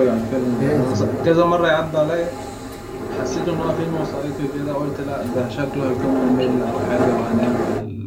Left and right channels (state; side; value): identical; both; correlation 1.00